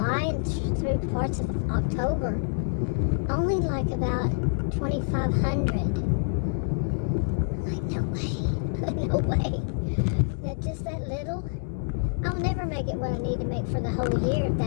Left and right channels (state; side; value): silent; right; digital silence